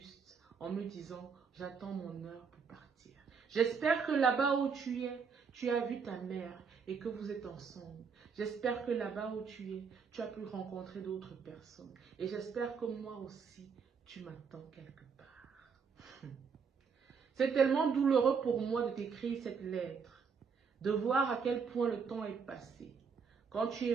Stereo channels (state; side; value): quieter; left; 5.8 dB